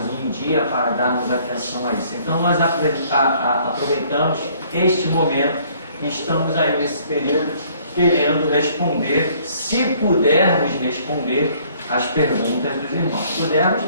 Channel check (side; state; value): both; inverted; correlation -0.60